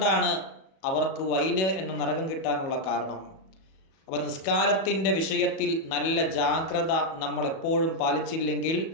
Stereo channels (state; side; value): late; right; 37 ms